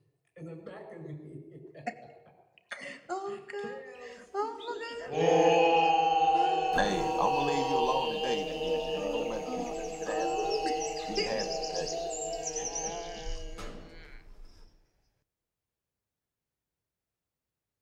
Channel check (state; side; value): identical; both; correlation 1.00